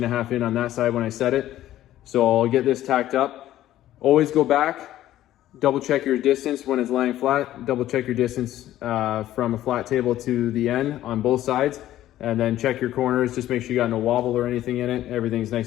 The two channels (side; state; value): right; quieter; 13.5 dB